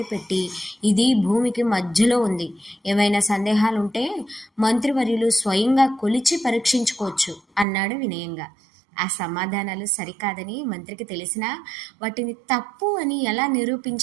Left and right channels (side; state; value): left; drops out; at 7.7 s